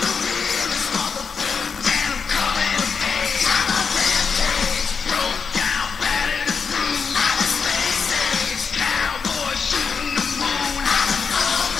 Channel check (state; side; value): quieter; right; 5.6 dB